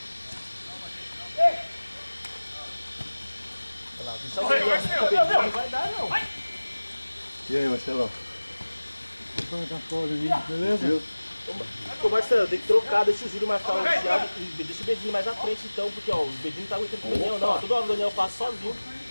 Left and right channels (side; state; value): both; inverted; correlation -1.00